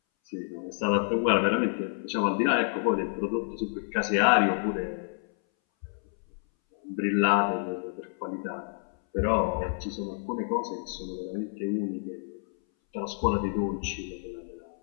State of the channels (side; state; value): right; silent; 59 dB below the other